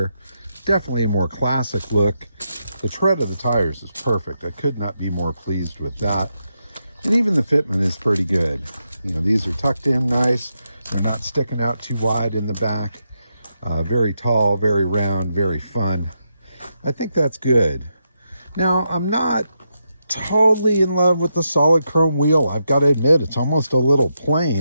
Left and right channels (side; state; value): both; inverted; correlation -0.84